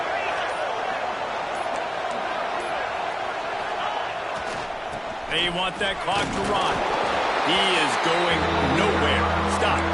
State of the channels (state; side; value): identical; both; correlation 1.00